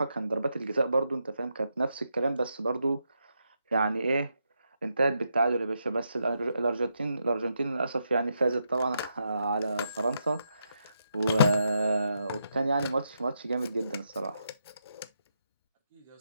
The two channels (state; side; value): inverted; both; correlation -0.82